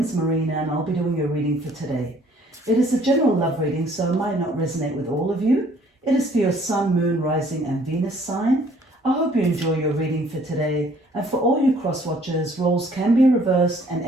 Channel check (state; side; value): normal; both; correlation 0.59